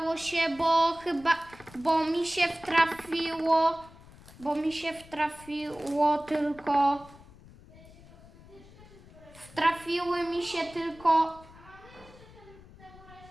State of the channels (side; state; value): left; noise; rumble, 21 dB below the sound